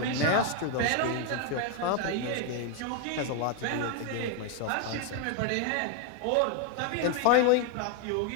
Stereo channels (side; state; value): both; different; correlation 0.01